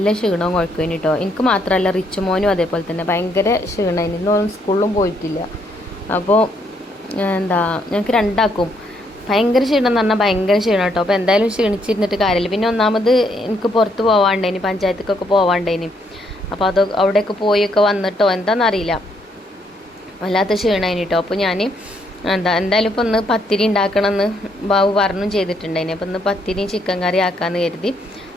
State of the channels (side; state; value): both; normal; correlation 0.72